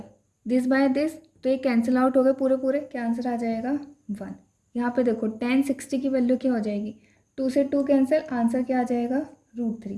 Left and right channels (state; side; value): identical; both; correlation 1.00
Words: दिस बाय दिस, तो ये कैंसिल आउट हो गए पूरे पूरे, क्या आंसर आ जाएगा 1। यहाँ पे देखो tan 60 की वैल्यू क्या हो जाएगी, 2 से 2 कैंसिल, आंसर क्या आ जाएगा